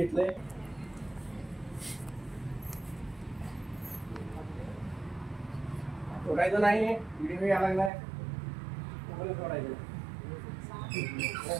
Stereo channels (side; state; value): left; drops out; at 7.9 s